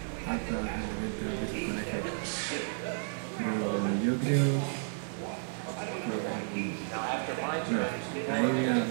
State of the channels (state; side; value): silent; left; 56 dB below the other